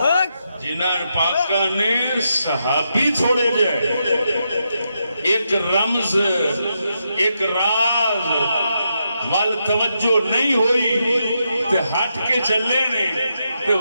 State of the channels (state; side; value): inverted; both; correlation -0.83